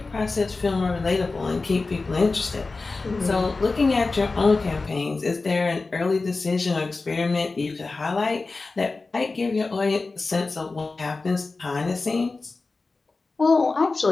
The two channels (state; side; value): quieter; right; 3.8 dB